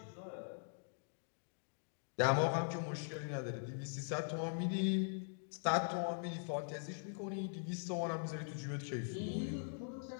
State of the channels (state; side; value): silent; right; digital silence